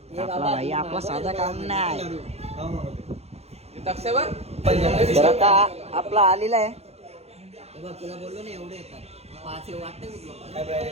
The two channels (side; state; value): left; late; 0.30 ms